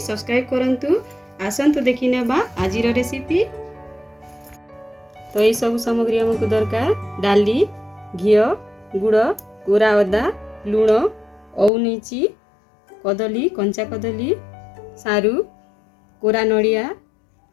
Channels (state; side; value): drops out; right; at 11.7 s